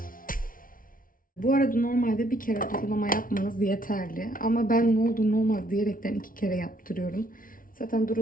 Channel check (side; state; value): right; late; 0.40 ms